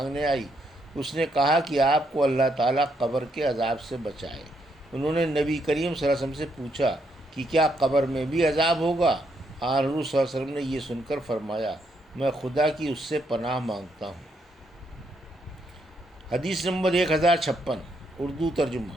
آئی، اس نے کہا کہ آپ کو اللہ تعالیٰ قبر کے عذاب سے بچائے۔ انہوں نے نبی کریم صلی اللہ علیہ وسلم سے پوچھا کہ کیا قبر میں بھی عذاب ہوگا؟ حضور صلی اللہ علیہ وسلم نے یہ سن کر فرمایا، میں خدا کی اس سے پناہ مانگتا ہوں۔ حدیث نمبر 1056 اردو ترجمہ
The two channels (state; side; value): normal; both; correlation 0.76